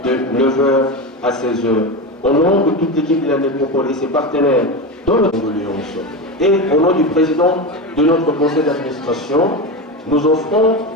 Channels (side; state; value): both; normal; correlation 0.20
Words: de 9h à 16h. Au nom de toute l'équipe de la Nécropole et ses partenaires dans le condoléance, et au nom du président de notre conseil d'administration, nous offrons